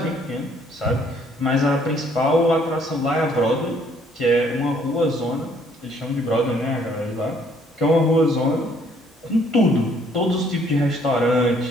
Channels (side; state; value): both; normal; correlation 0.64